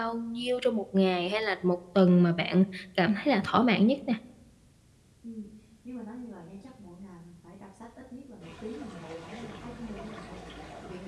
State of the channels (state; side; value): identical; both; correlation 1.00